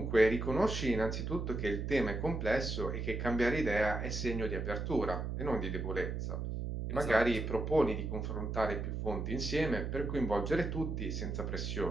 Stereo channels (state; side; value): noise; right; hum, 3 dB below the sound